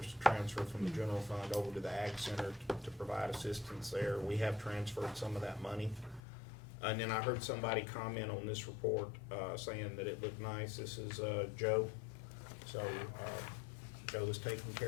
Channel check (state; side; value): drops out; right; at 6.2 s